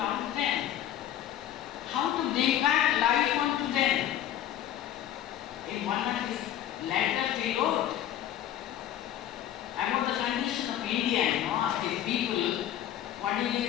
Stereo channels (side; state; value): right; quieter; 11.6 dB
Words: them, how to bring back life unto them. In one of his letters he wrote about the condition of India, of his people. What did